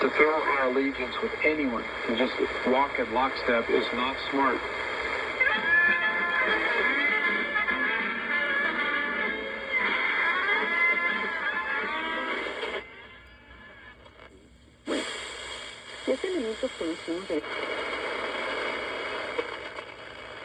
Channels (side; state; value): both; identical; correlation 1.00